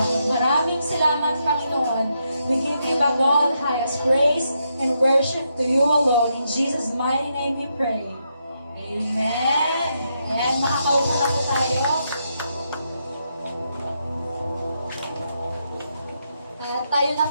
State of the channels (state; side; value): inverted; both; correlation -0.81